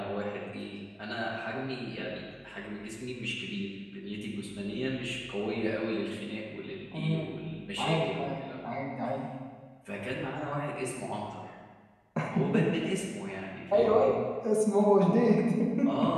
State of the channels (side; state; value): both; identical; correlation 1.00